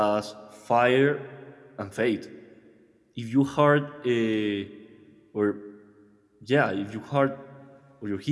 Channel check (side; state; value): both; identical; correlation 1.00